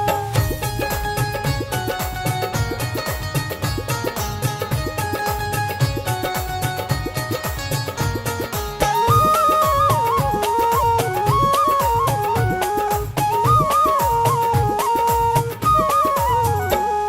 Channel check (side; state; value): both; identical; correlation 1.00